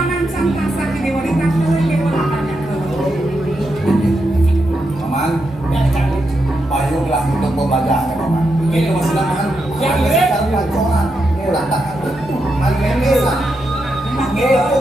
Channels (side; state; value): both; normal; correlation 0.84